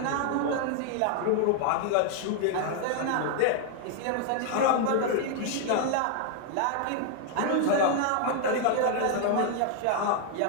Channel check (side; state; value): both; different; correlation 0.00